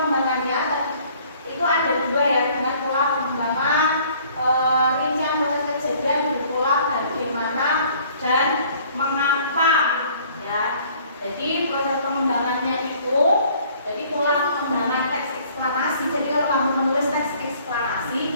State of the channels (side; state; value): both; inverted; correlation -0.56